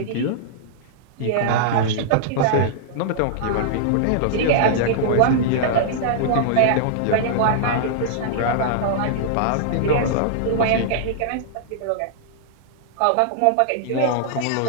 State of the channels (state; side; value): different; both; correlation -0.02